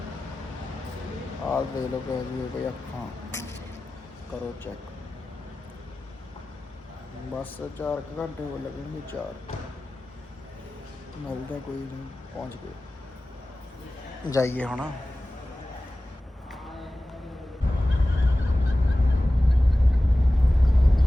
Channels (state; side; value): normal; both; correlation 0.96